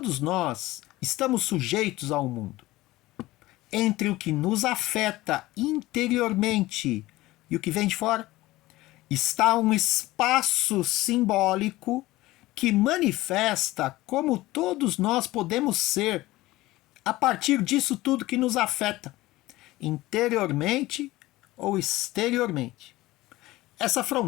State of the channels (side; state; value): right; quieter; 18.2 dB